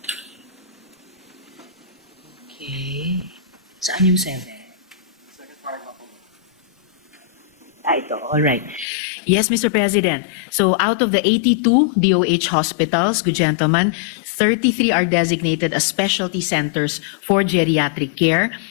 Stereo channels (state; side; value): drops out; right; at 8.8 s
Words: Okay. Saan yung 7? Ito. All right. Yes, Mr. President. So out of the 82 DOH hospitals, good gentlemen, 33 are designated as specialty centers for geriatric care.